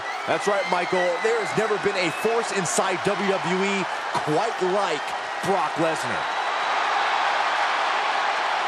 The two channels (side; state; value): both; identical; correlation 1.00